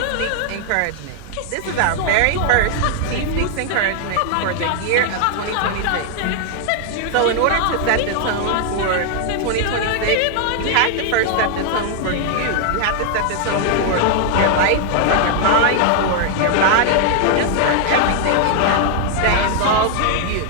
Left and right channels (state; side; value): different; both; correlation 0.00